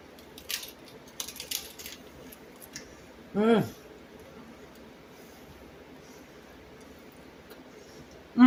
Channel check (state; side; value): identical; both; correlation 1.00